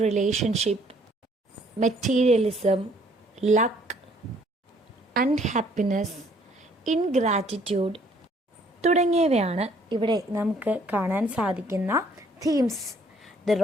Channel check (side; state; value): both; normal; correlation 0.62